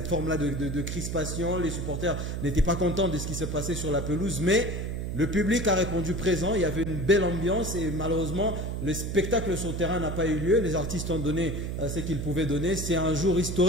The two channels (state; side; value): noise; right; hum, 3 dB below the sound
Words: forme-là de crispation. Les supporters n'étaient pas contents de ce qui se passait sur la pelouse, mais le public a répondu présent, il y avait une belle ambiance et malheureusement le spectacle sur le terrain n'a pas eu lieu. Les artistes ont donné ce qu'ils pouvaient donner. C'est un jour